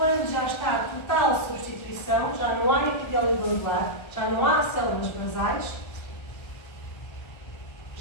já está a total substituição, já não há epitélio glandular, já não há células basais,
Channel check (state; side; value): late; right; 1.3 ms